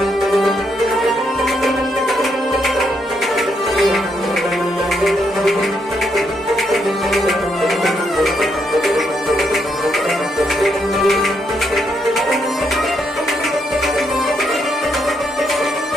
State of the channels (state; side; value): normal; both; correlation 0.77